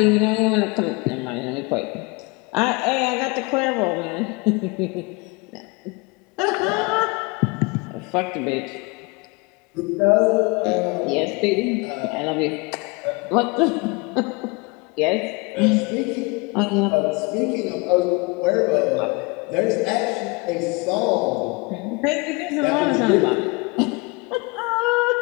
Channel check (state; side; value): quieter; right; 27.9 dB